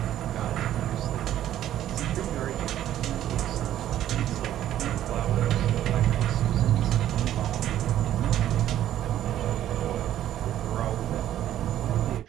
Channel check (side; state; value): left; quieter; 12.0 dB